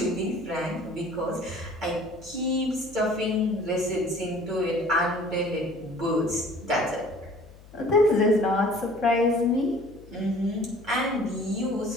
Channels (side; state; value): left; noise; hum, 21 dB below the sound